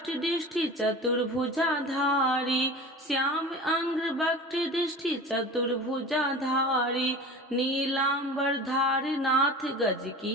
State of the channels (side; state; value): both; normal; correlation 0.36